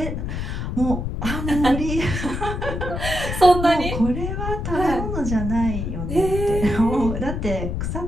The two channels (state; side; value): noise; left; rumble, 3 dB below the sound